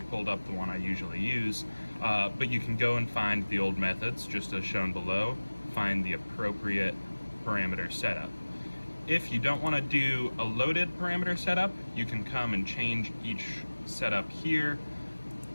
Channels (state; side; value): inverted; both; correlation -1.00